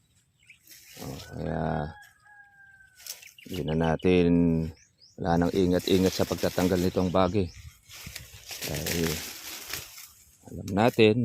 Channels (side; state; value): both; identical; correlation 1.00